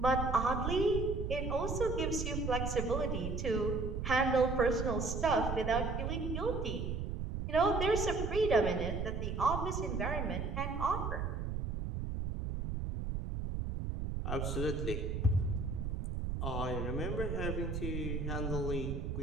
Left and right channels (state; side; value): noise; right; rumble, 2 dB below the sound